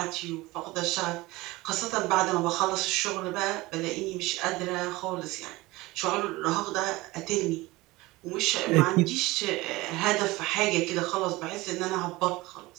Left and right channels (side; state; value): left; quieter; 20.5 dB